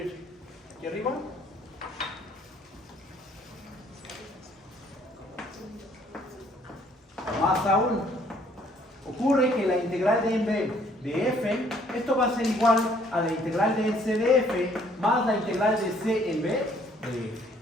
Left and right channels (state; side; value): normal; both; correlation 0.62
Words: Aquí arriba. Más aún, ocurre que la integral de en b de f, esto va a ser igual a la integral de c de f más la integral de c en b de f.